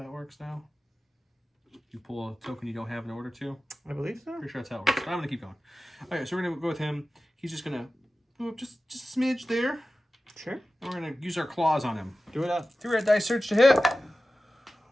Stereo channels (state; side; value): normal; both; correlation 0.95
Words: works now. You pull a token you don't have in order to. I believe so. Pretty sure that's how it works. But I'm gonna keep going. All right, so we're gonna go with him. He's just gonna move up just a smidge there. Sure. And we're gonna use our claws on him. Do it up. 3 red dice surge to hit.